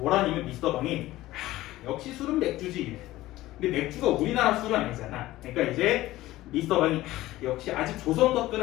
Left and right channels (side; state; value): right; quieter; 16.6 dB